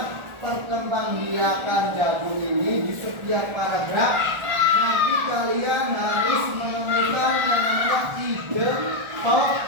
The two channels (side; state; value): left; late; 1.4 ms